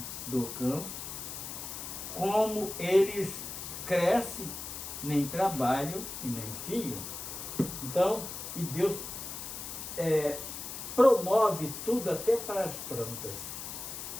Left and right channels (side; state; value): left; noise; hiss, 8 dB below the sound